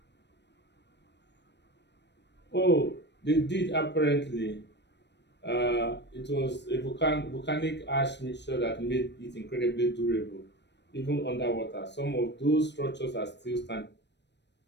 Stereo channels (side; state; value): right; late; 0.50 ms